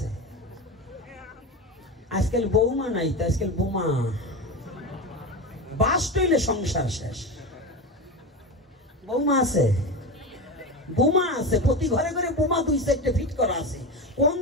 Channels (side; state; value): both; normal; correlation 0.22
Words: আজকাল বৌমা নাই তো, আজকাল বোমা। বাস টইলে সংসার শেষ। বৌমা আছে, বোমা আছে, প্রতি ঘরে ঘরে বোমা 2-4টে ফিট করা আছে। কোন